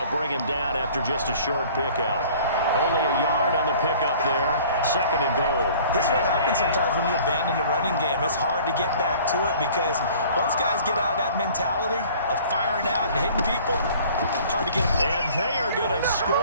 bring him down after just a short pickup. Only a yard on the pickup there. 2nd and goal. This is what happens sometimes when you abandon the running game. It's hard to get back to it because once guys get out of that mentality of firing out and hitting people, hard to get them. And they are going to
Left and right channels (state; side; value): inverted; both; correlation -0.50